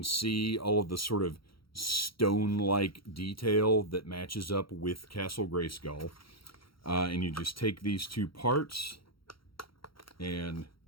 see all of the sort of stone-like detail that matches up with Castle Grayskull. And you just take these two parts and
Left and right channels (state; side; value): late; right; 0.74 ms